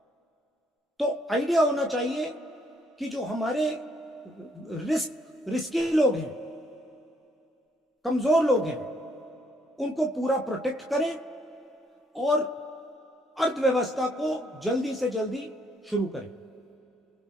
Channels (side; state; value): both; normal; correlation 0.69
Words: तो आइडिया होना चाहिए कि जो हमारे रिस्की लोग हैं, कमजोर लोग हैं, उनको पूरा प्रोटेक्ट करें और अर्थव्यवस्था को जल्दी से जल्दी शुरू करें।